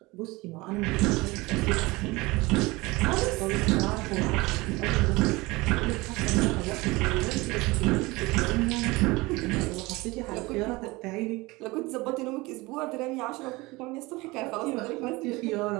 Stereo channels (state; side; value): quieter; left; 22.5 dB